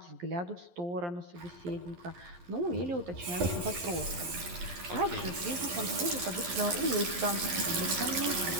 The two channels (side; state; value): left; late; 12 ms